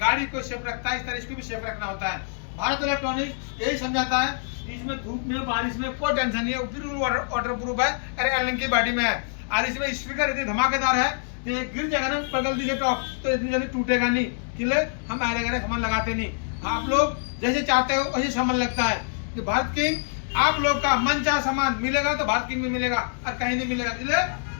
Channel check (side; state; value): right; silent; digital silence